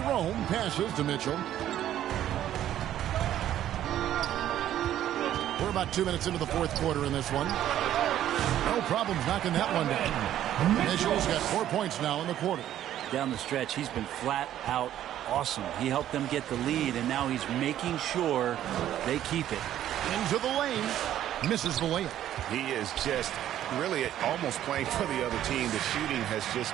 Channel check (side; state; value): left; quieter; 11.8 dB